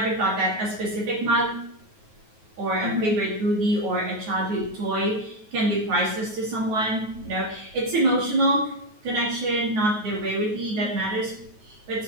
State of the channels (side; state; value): left; late; 9.4 ms